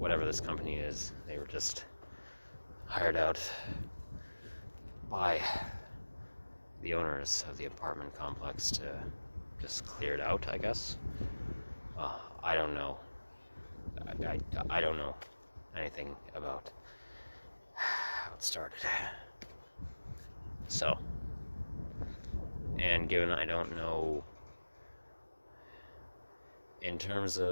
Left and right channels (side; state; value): both; inverted; correlation -1.00